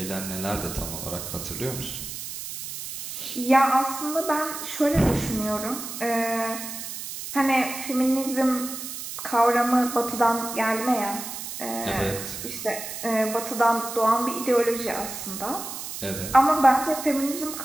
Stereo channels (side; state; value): right; noise; hiss, 8 dB below the sound